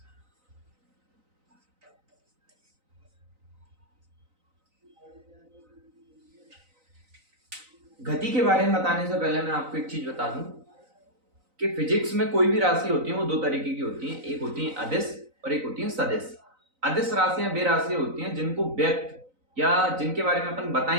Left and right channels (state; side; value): late; left; 3.9 ms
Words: गति के बारे में बताने से पहले मैं आपको एक चीज बता दूं कि फिजिक्स में कोई भी राशि होती है वो दो तरीके की होती है। एक होती है अदिश और एक होती है सदिश। अदिश राशियां वे राशियां होती हैं जिनको व्यक्त या जिनके बारे में अपन